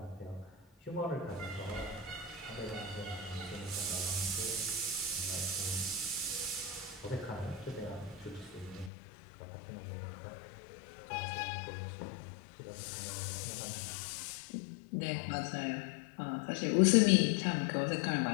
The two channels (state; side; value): drops out; right; at 8.9 s